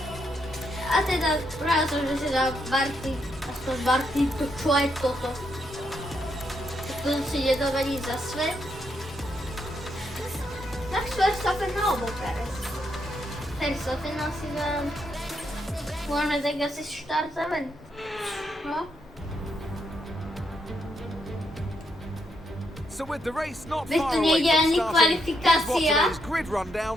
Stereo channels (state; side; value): normal; both; correlation 0.78